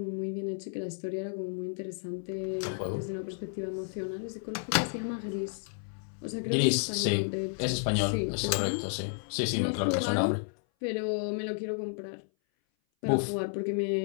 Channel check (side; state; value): right; silent; 57 dB below the other